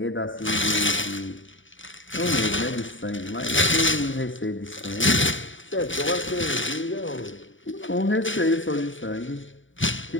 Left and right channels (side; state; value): right; late; 0.56 ms